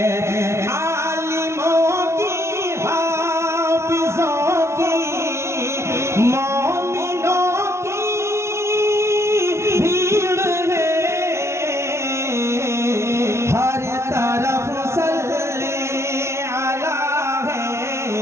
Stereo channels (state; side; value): late; left; 0.13 ms